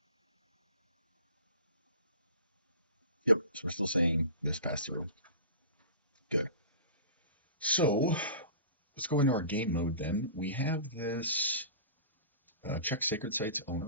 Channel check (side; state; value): both; inverted; correlation -0.36